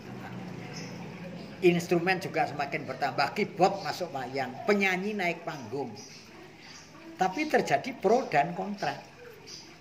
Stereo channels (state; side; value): identical; both; correlation 1.00